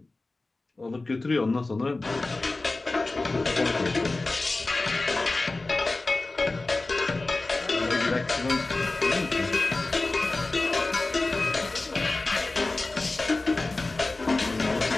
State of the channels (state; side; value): quieter; right; 3.2 dB